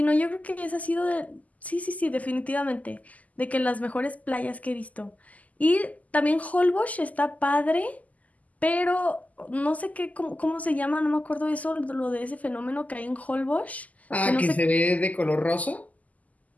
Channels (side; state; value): right; late; 0.075 ms